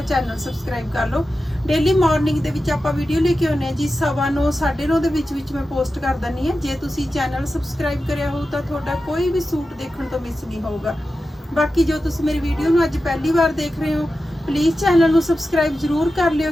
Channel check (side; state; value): both; normal; correlation 0.92